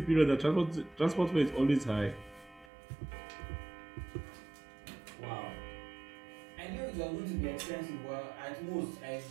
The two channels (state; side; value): drops out; left; at 2.7 s